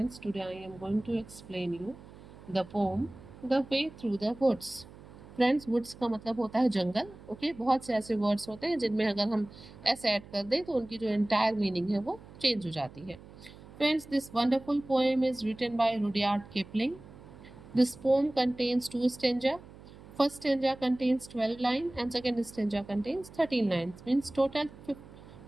today I am going to explain you the poem The Way Through the Woods. Friends, woods का मतलब होता है जंगल. Okay, बहुत से ऐसे words होते हैं जिनमें अगर हम एस ऐड कर दें तो उनकी जो एंटायर मीनिंग है वो चेंज हो जाती है. Friends, this wonderful poem is written by Rudyard Kipling. This poem contains two stanza. First stanza contains 12 lines and second stanza contains 13 lines. Means total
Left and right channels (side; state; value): right; noise; hum, 19 dB below the sound